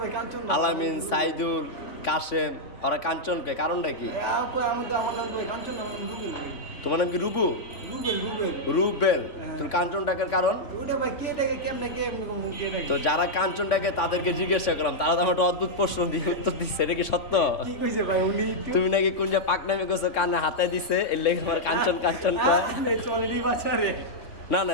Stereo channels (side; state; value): right; late; 3.5 ms